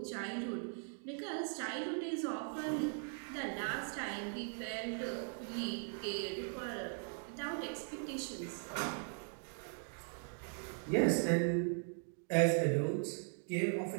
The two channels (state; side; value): silent; left; 51 dB below the other